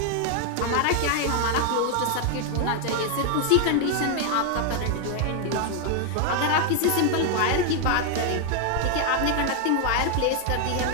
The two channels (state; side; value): different; both; correlation 0.00